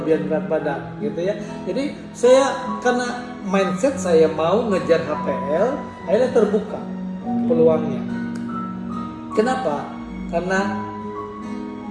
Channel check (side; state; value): both; identical; correlation 1.00